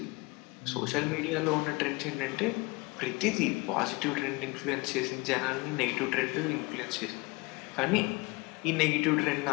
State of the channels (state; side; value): quieter; right; 25.5 dB